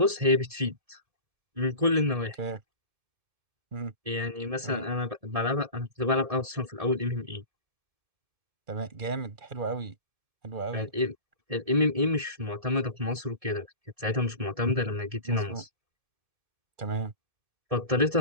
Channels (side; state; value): left; late; 1.7 ms